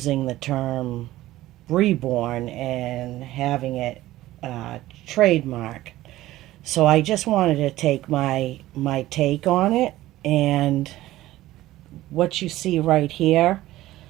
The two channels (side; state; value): left; quieter; 15.9 dB